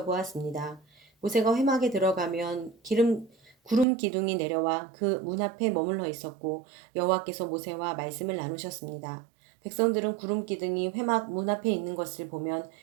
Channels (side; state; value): left; drops out; at 3.9 s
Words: 모세가 회막에 들어가면 구름 기둥이 내려와 그 문 앞에 머물러 있었고 여호와께서 모세와 말씀을 나누셨습니다. 백성들은 구름 기둥이 회막 문 앞에 있는 것을 보면